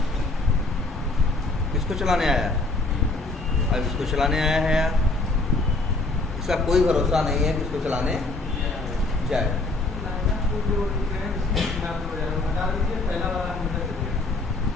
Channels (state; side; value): quieter; right; 3.1 dB